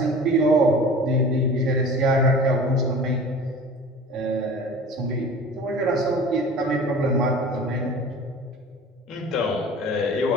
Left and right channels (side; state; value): both; normal; correlation 0.41